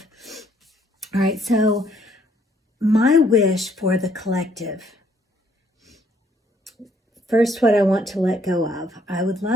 All right, so my wish for the collective. First, what I want to let go of. I would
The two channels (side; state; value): both; normal; correlation 0.66